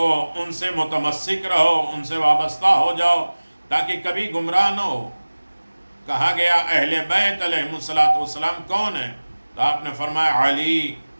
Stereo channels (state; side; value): inverted; both; correlation -1.00